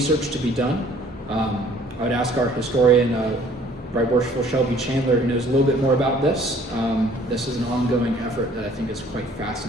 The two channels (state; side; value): normal; both; correlation 0.56